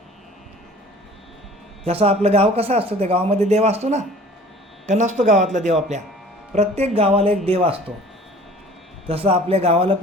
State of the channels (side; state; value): both; normal; correlation 0.48